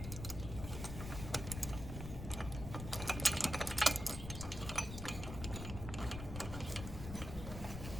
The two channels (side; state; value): left; noise; rumble, 7 dB below the sound